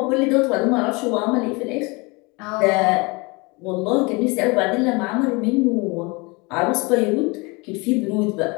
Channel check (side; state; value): right; quieter; 27.0 dB